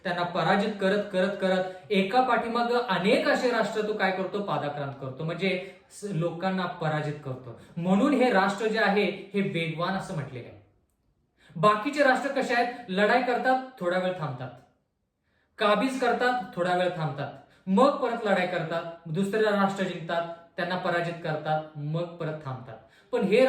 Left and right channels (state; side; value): identical; both; correlation 1.00